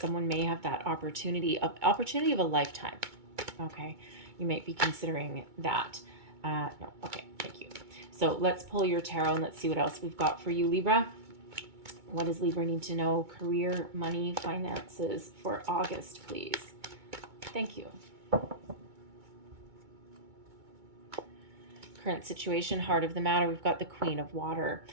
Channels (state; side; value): late; left; 2.2 ms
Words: may have that opportunity of a lifetime. Okay, you might be considering that. No, okay, thank you. So let's pull your tarot and let's see what else we've got for you, Libra. What does Libra need to know? Career, money, finances for August, please. Thank you. Current situation, heart of the matter, we've got the Queen of Water.